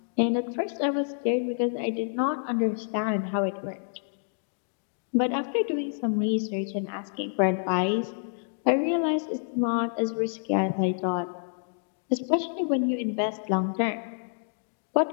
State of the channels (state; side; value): silent; right; digital silence